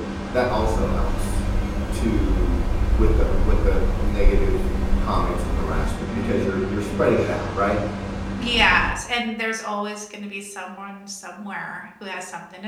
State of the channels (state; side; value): identical; both; correlation 1.00